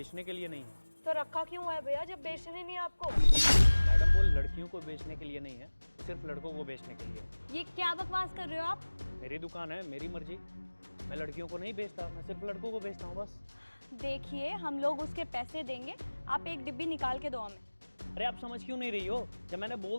के लिए नहीं है। तो रखा क्यों है भैया जब बेचने नहीं है आपको? मैडम वो लड़कियों को बेचने के लिए नहीं है, सिर्फ लड़कों को बेचने के लिए है। ये क्या बकवास कर रहे हो आप? मेरी दुकान है, मेरी मर्जी। मैं लड़कियों को नहीं बेचता, मैं सिर्फ लड़कों को बेचता हूँ बस। देखिए हम लोग उसके पैसे देंगे, आप एक डिब्बी निकाल के दो हमें। अरे आप समझ क्यों नहीं रही हो? जब मैंने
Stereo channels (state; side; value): inverted; both; correlation -1.00